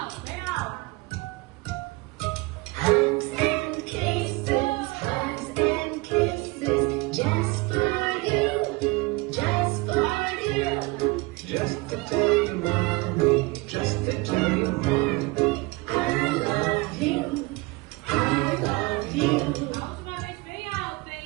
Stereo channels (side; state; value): left; quieter; 24.1 dB